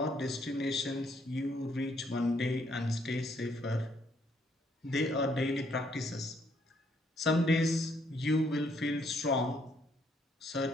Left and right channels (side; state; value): both; normal; correlation 0.69